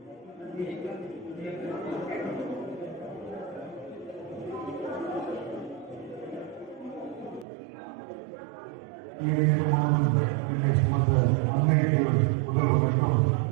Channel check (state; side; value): drops out; left; at 7.5 s